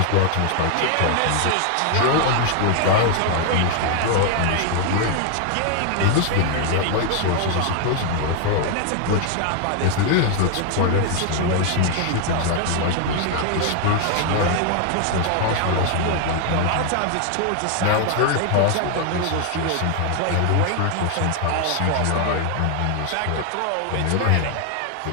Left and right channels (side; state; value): both; different; correlation 0.00